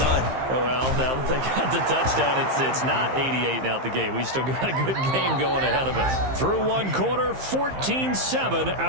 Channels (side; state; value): left; late; 15 ms